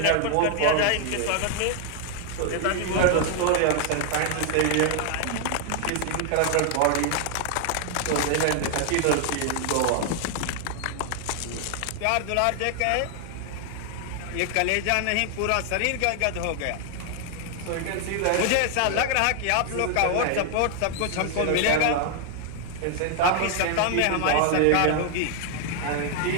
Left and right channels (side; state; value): both; different; correlation 0.00